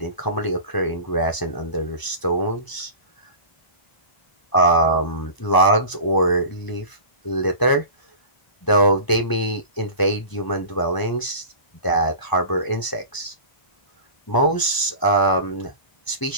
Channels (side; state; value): right; late; 1.0 ms